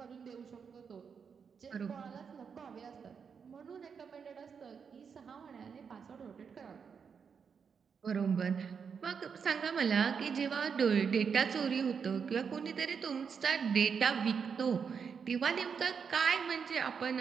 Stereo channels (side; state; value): left; quieter; 6.4 dB